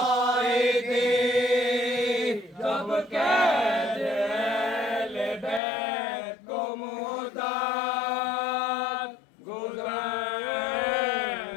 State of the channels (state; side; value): drops out; right; at 5.6 s